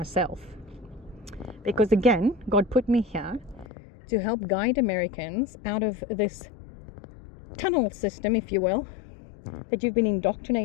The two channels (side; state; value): right; drops out; at 3.7 s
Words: Because again, God put me here to help guide Americans out of this tunnel system, if you will, that you've been